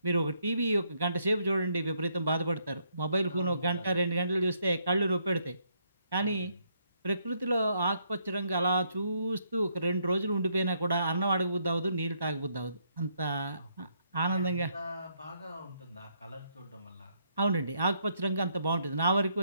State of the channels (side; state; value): both; inverted; correlation -0.73